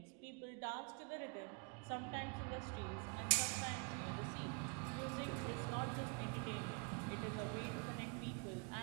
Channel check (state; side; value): quieter; left; 34.6 dB